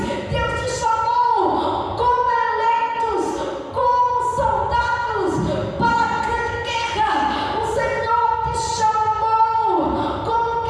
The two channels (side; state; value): both; identical; correlation 1.00